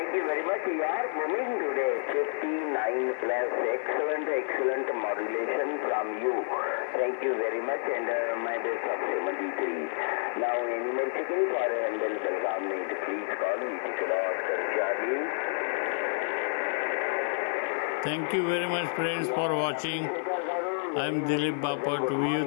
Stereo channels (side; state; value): right; silent; digital silence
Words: very much. You are moving today 59+. Excellent modulation from you. Thank you very much, and my best of 73. Now, any more checking for Handel Belgaum need, please call me. Charlie. Thank you very much, friends, for watching. I am Dilip Bapat.